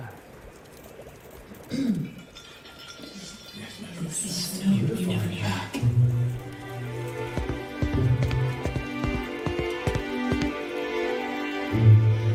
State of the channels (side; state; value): both; identical; correlation 1.00